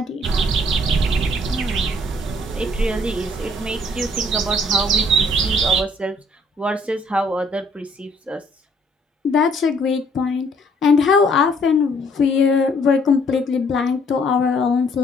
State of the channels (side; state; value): both; normal; correlation 0.63